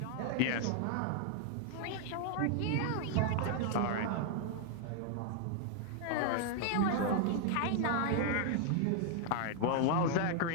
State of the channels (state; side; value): different; both; correlation 0.00